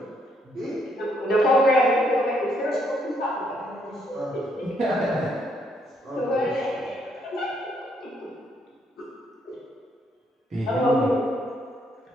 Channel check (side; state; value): both; normal; correlation 0.71